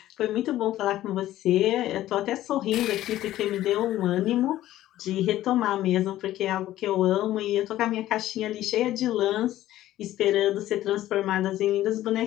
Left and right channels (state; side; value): quieter; right; 14.1 dB